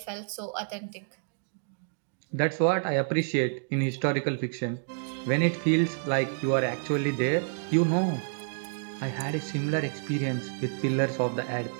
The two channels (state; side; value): silent; left; digital silence